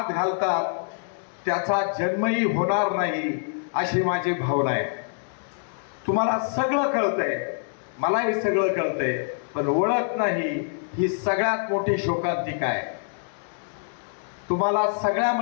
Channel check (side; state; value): right; silent; digital silence